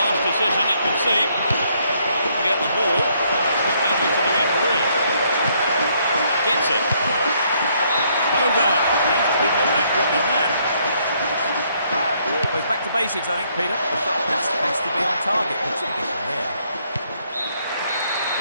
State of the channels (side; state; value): both; inverted; correlation -0.69